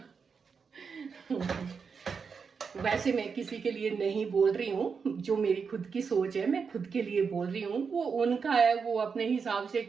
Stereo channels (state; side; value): quieter; left; 5.7 dB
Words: वैसे मैं किसी के लिए नहीं बोल रही हूँ, जो मेरी खुद की सोच है मैं खुद के लिए बोल रही हूँ, वो उनका है, वो अपने हिसाब से